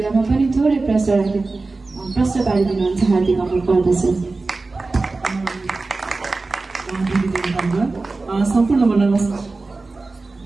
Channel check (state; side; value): quieter; left; 3.6 dB